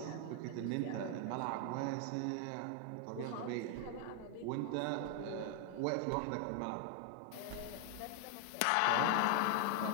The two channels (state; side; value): different; both; correlation 0.00